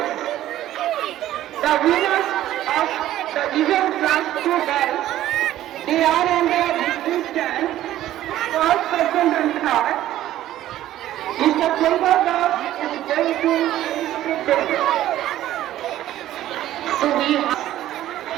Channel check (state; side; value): quieter; left; 13.5 dB